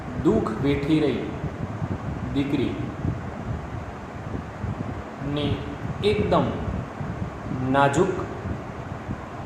દુઃખ વેઠી રહી દીકરી ની એકદમ નાજુક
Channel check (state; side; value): identical; both; correlation 1.00